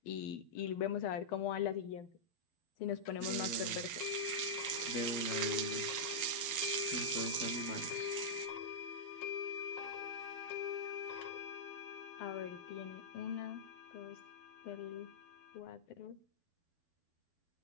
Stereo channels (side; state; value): right; late; 12 ms